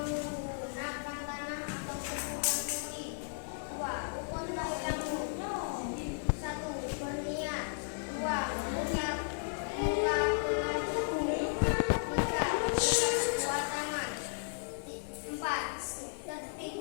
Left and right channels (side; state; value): right; silent; digital silence